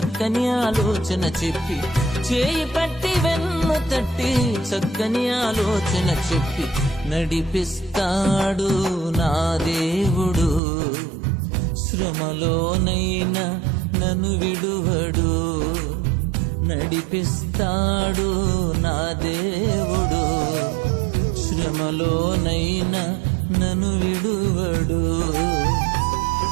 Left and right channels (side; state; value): left; drops out; at 10.6 s